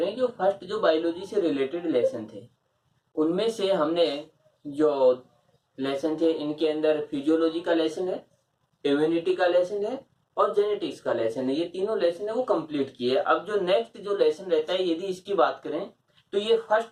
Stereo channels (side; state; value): both; identical; correlation 1.00